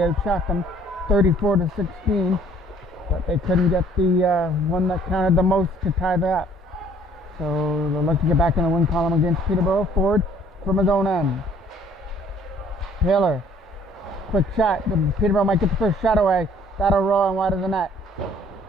outshot them 34-16. But they couldn't get the one that counted the most to tie that up. So they'll look to get back in the win column against Peterborough. Ford from his own end. Taylor, quick shot. Peterborough might get the first shot away. That'll roll and wide of the net.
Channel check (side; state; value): both; normal; correlation 0.59